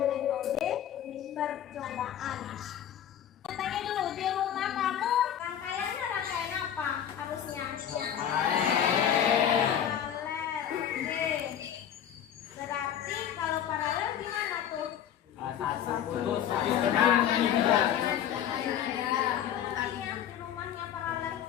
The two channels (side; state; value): right; quieter; 9.8 dB